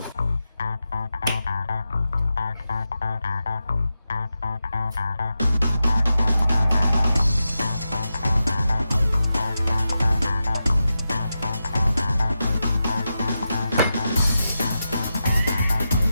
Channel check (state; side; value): inverted; both; correlation -0.90